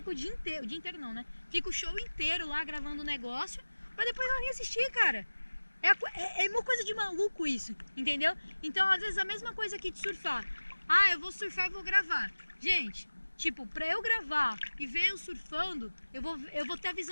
o dia inteiro não, né? Fica o show inteiro lá gravando o negócio, pra depois ela nem assistir, cara. É uma coisa de maluco isso, entendeu? Então, às vezes, a mesma coisa aqui de surfar. Eu vou surfar e vou gravar. Gente, tipo, pra eu gravar e ver eu surfando, eu vou ter a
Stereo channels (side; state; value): both; inverted; correlation -1.00